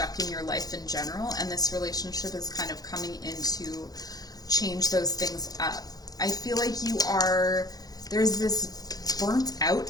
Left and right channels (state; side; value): late; right; 0.18 ms